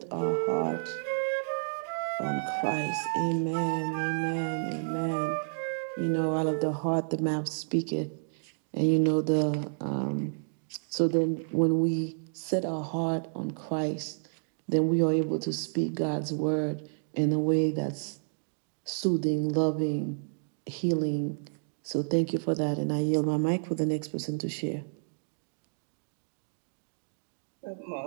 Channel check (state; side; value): silent; left; digital silence